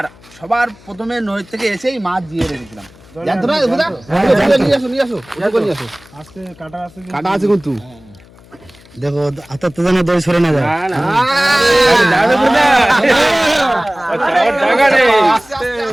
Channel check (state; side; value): noise; left; hum, 25 dB below the sound